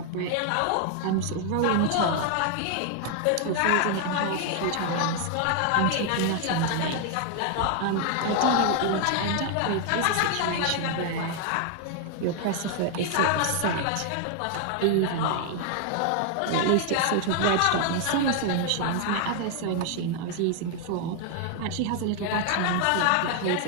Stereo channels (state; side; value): different; both; correlation 0.00